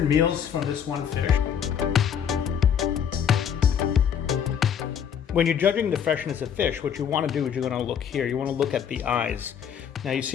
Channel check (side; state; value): right; quieter; 8.3 dB